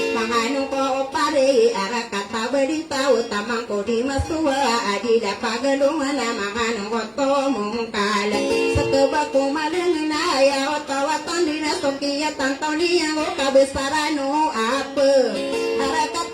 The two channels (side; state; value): both; identical; correlation 1.00